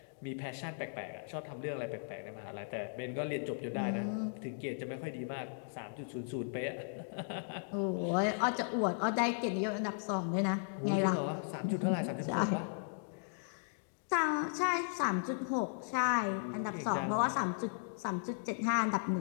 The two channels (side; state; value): right; silent; digital silence